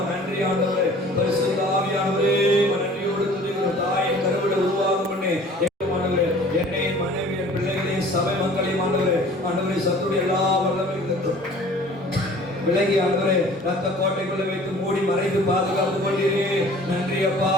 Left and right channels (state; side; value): normal; both; correlation 0.48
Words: நன்றி ஆண்டவரே. பரிசுத்த ஆவியானவரே, நன்றியோடு துதிக்கிறோம். தாயின் கருவிட உருவாகும் முன்னே என்னையும் மனைவி என் பிள்ளைகளையும் சபை மக்களையும் ஆண்டவரே சத்துடைய எல்லா வல்லமைகளுக்கும் விலகி ஆண்டவரே ரத்த கோட்டைக்குள்ள வைத்து மூடி மறைத்து பாதுகாத்து கொண்டீரே. நன்றி அப்பா,